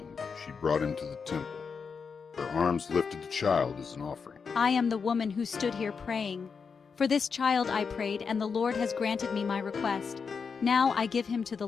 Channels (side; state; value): right; quieter; 5.7 dB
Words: she brought him to the temple. Her arms lifted the child as an offering. I am the woman who stood here praying. For this child I prayed, and the Lord has granted me my request. Now I give him to the